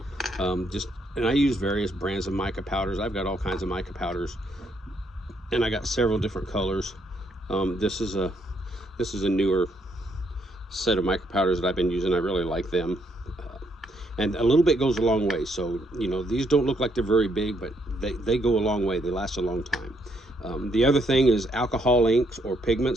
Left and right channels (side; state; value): both; normal; correlation 0.73